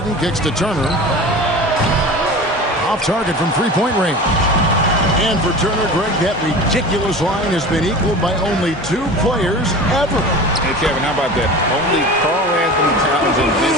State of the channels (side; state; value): both; normal; correlation 0.34